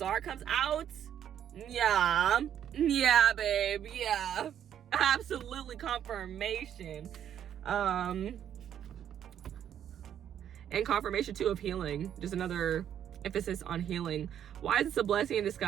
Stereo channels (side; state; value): left; quieter; 9.8 dB